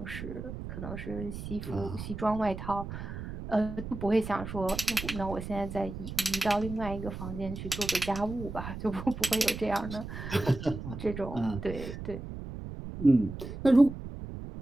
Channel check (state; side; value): noise; right; rumble, 8 dB below the sound